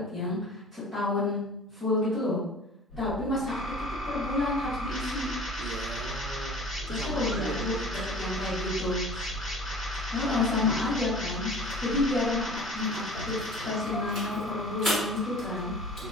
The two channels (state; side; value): normal; both; correlation 0.43